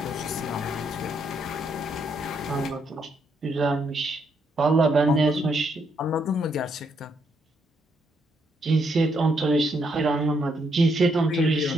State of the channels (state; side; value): normal; both; correlation 0.76